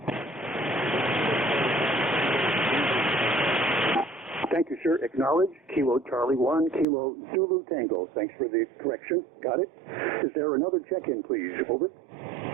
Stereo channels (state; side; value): drops out; left; at 6.9 s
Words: Thank you, sir. Acknowledge. Kilo Charlie 1, Kilo Zulu Tango. Thanks for the correction. Got it. Is there another check-in, please? Over.